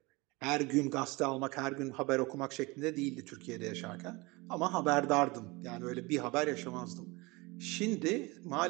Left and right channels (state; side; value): quieter; left; 24.4 dB